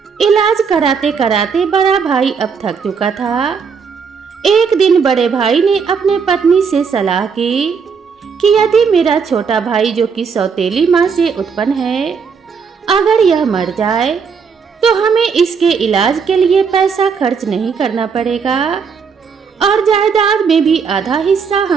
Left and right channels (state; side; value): quieter; left; 5.9 dB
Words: इलाज कराते कराते बड़ा भाई अब थक चुका था। एक दिन बड़े भाई ने अपने पत्नी से सलाह की कि यदि मेरा छोटा भाई, जो कि सौतेली माँ से उत्पन्न है, अगर यह मर जाए तो हमें इसके इलाज के लिए पैसा खर्च नहीं करना पड़ेगा और जायदाद में भी आधा हिस्सा